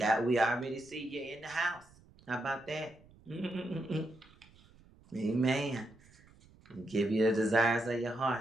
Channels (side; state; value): right; noise; rumble, 26 dB below the sound